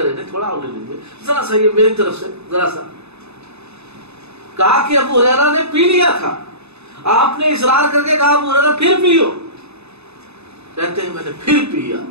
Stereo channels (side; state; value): left; late; 0.80 ms